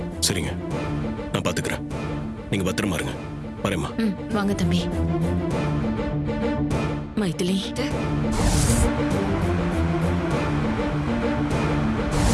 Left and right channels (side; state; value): both; identical; correlation 1.00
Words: சரிங்க, நான் பாத்துக்கிறேன். நீங்க பத்திரமா இருங்க. வரேம்மா. வாங்க தம்பி. மைதிலி,